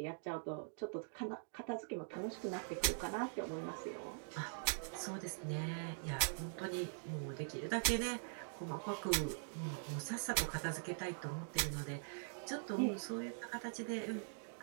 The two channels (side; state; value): left; silent; digital silence